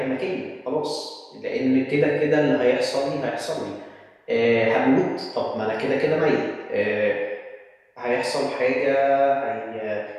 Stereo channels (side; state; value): both; identical; correlation 1.00